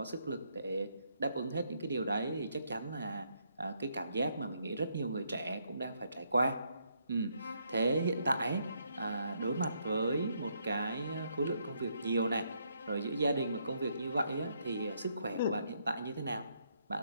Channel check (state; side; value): inverted; both; correlation -0.74